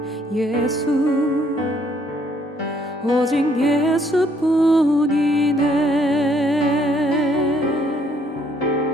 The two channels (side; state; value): both; normal; correlation 0.66